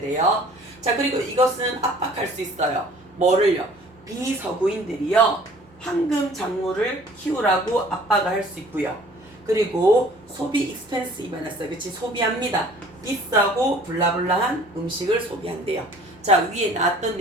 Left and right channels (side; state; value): both; normal; correlation 0.51